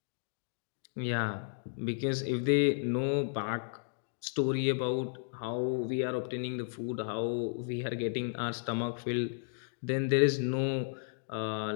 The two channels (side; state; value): right; silent; digital silence